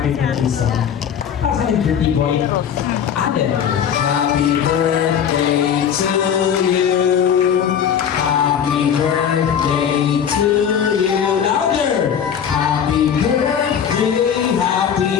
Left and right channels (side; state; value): right; quieter; 8.3 dB